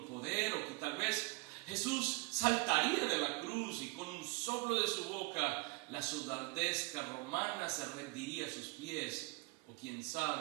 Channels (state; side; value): quieter; left; 26.6 dB